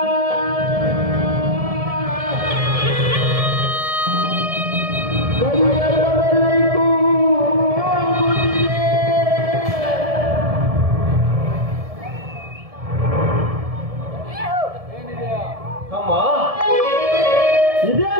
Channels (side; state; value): left; late; 1.7 ms